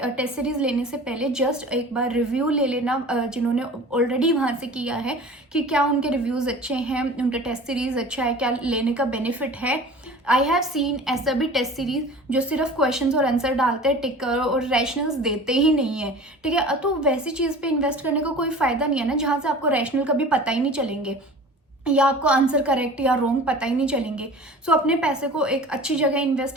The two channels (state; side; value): normal; both; correlation 0.40